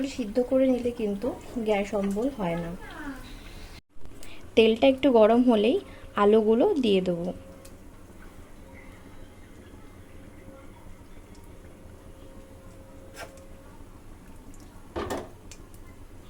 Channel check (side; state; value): both; identical; correlation 1.00